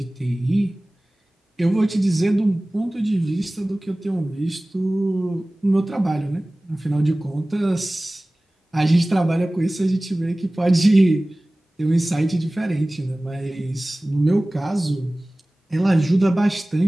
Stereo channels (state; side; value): normal; both; correlation 0.98